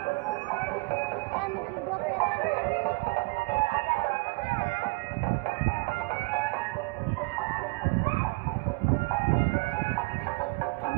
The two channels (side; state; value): left; quieter; 26.9 dB